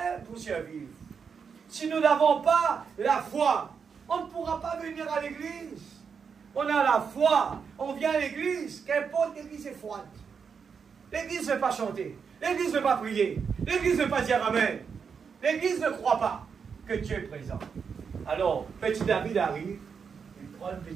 pour survivre. Si nous n'avons pas la foi, on ne pourra pas venir à l'église. On a la foi, on vient à l'église, qu'importe l'église est froide. L'église ne veut pas chanter, l'église ne veut pas prier, l'église ne veut pas dire amen. L'église ne croit pas que Dieu est présent. Alors, petit David arrive, il prend une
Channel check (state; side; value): quieter; left; 6.2 dB